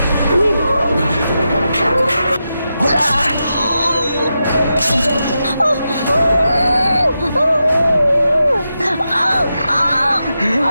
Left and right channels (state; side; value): inverted; both; correlation -0.88